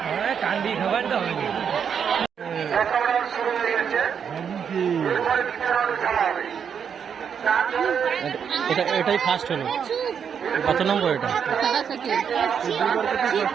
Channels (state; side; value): quieter; left; 7.4 dB